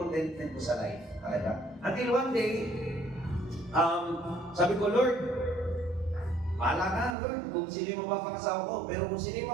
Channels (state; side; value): drops out; left; at 7.2 s